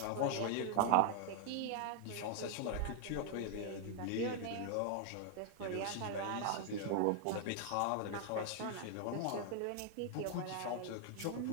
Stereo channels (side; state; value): both; different; correlation 0.00